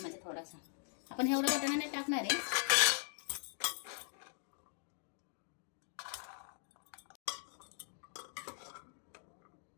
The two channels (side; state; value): right; silent; 51 dB below the other